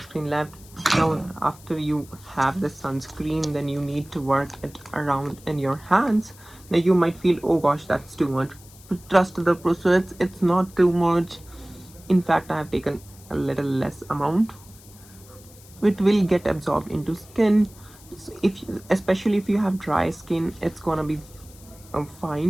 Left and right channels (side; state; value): left; noise; hiss, 23 dB below the sound